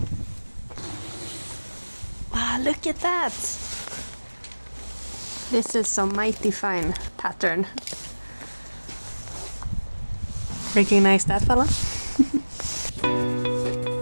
Wow, look at that! This is some mighty fine pattern. Recognize that fella?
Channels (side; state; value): both; inverted; correlation -1.00